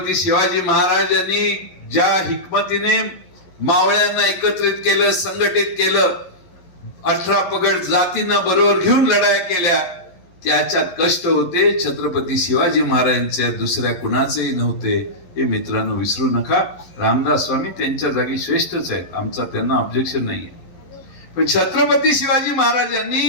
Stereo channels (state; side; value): late; right; 11 ms